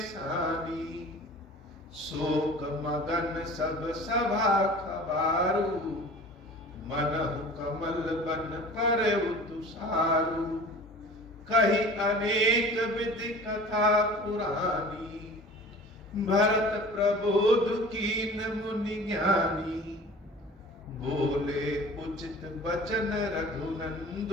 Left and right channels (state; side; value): normal; both; correlation 0.42